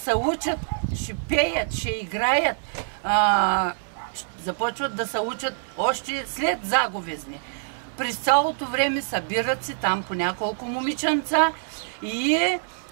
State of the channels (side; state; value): left; silent; digital silence